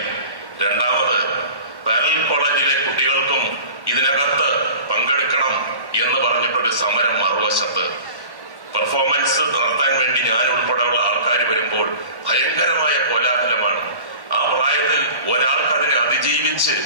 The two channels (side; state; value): left; late; 1.1 ms